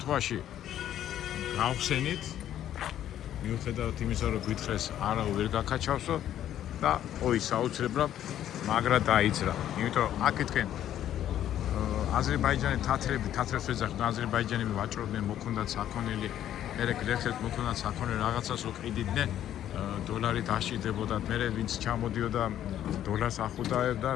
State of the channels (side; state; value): right; quieter; 11.4 dB